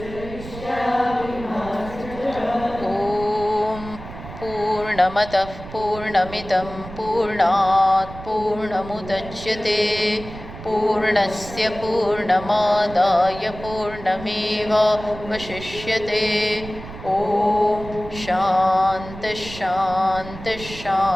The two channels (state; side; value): noise; right; rumble, 13 dB below the sound